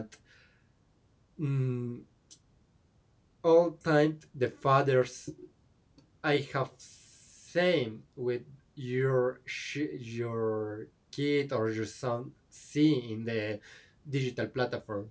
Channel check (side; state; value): both; identical; correlation 1.00